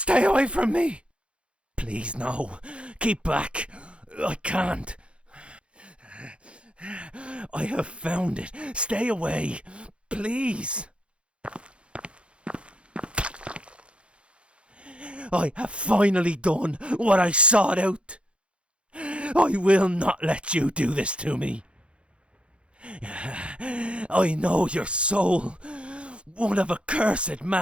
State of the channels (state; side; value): late; left; 0.059 ms